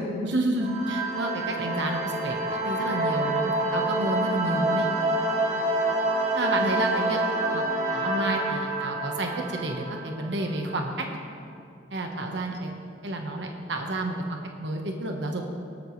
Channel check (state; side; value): normal; both; correlation 0.33